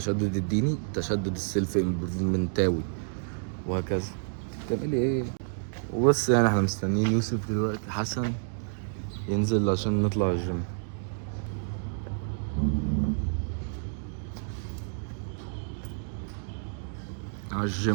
الديني، التشدد السيلف امبروفمنتاوي، وهكذا. بتعملي ايه؟ وبس يعني احنا مستنيين يوسف دلوقتي حسن ينزل عشان نطلع الجيم. على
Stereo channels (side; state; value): left; silent; digital silence